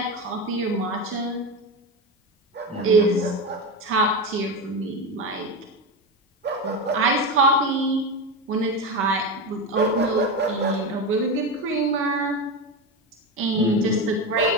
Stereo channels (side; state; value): both; normal; correlation 0.18